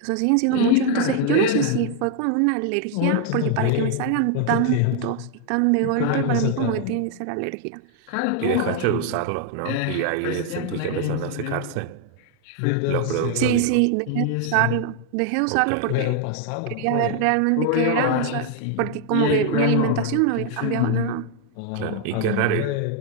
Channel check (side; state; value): both; different; correlation 0.00